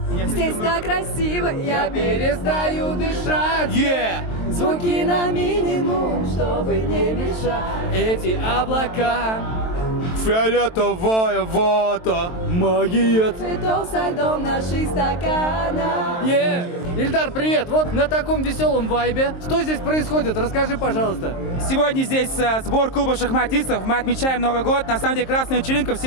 Здесь так красиво, я перестаю дышать. Звуки на минимум, чтобы не мешать. Эти облака, Фиолетовая вода. магия. Цветов со льдом наших стаканов. Ильдар, привет! Вот на таком веселом вайбе. Что здесь происходит? Расскажи, пожалуйста. Сегодня здесь сбор клуба шахматистов. Мы отмечаем Новый год. На самом деле красная вечеринка.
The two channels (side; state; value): right; late; 23 ms